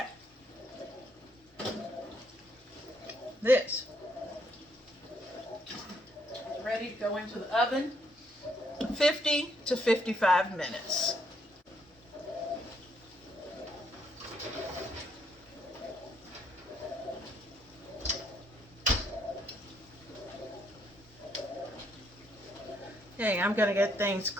This is ready to go into the oven. 50 to 55 minutes. Okay, I'm going to get things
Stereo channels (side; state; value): both; normal; correlation 0.72